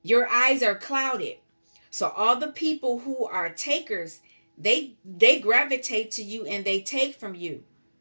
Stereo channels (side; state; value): both; inverted; correlation -1.00